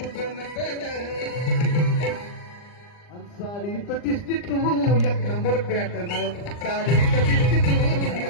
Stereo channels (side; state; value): right; late; 39 ms